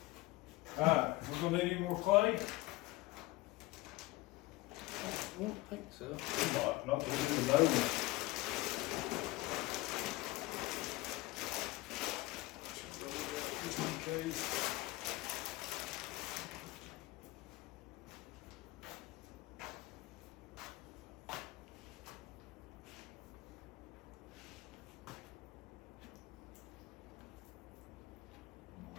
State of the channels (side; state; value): right; quieter; 19.8 dB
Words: Alright, we're gonna need any more clay? I don't think so. Not to do the nose. Just in case.